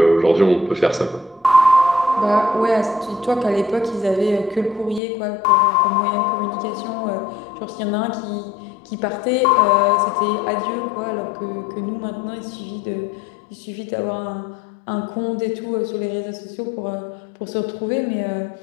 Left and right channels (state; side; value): drops out; right; at 5.0 s